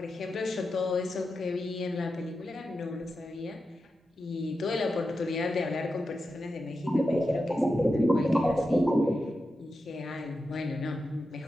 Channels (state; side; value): normal; both; correlation 0.90